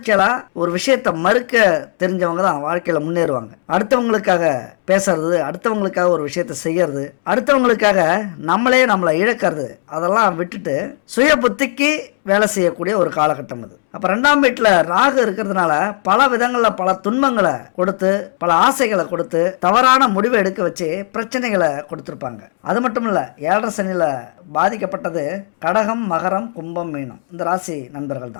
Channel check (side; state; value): right; silent; 68 dB below the other